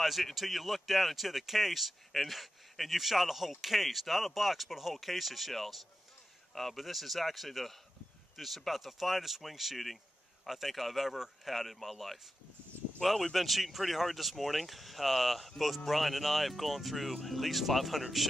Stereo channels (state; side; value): normal; both; correlation 0.91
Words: it until you look down into the case, and you've shot a whole case, not a box, but a whole case of shells. But this is actually this is about the finest wing shooting I think I've ever had in my life. Well, we've been shooting pretty hard this morning. Both Brian and I have gone through at least 500